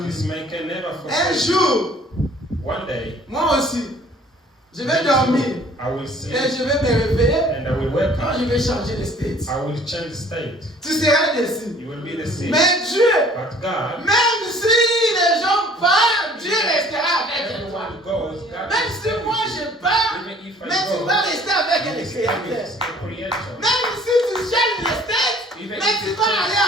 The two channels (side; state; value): both; normal; correlation 0.54